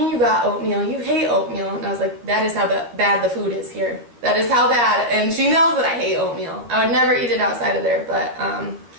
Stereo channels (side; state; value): left; late; 13 ms